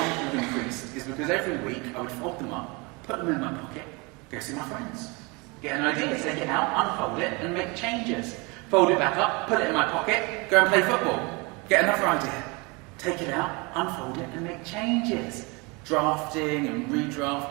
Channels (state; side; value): quieter; left; 27.9 dB